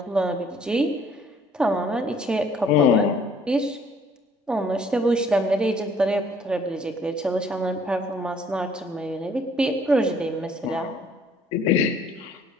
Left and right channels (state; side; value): normal; both; correlation 0.60